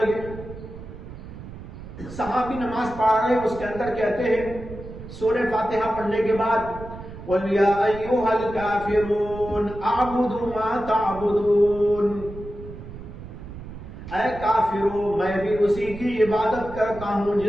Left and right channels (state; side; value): noise; right; rumble, 13 dB below the sound